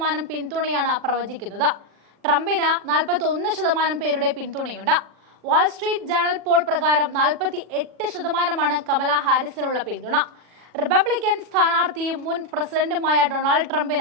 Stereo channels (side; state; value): left; late; 40 ms